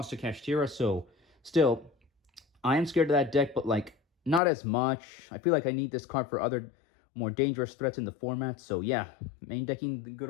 to Kashtira, so still, I am scared of that deck, but like not as much. I feel like I need this card for other more dangerous threats in the format. So yeah, main decking the good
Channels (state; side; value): drops out; right; at 4.4 s